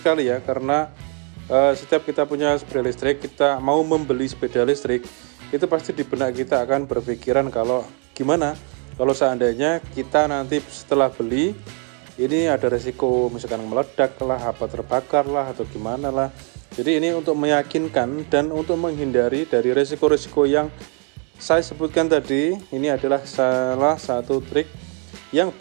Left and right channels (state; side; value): quieter; left; 38.8 dB